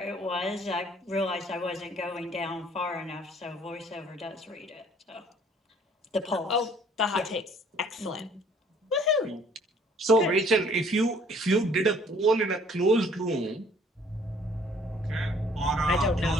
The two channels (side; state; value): both; normal; correlation 0.58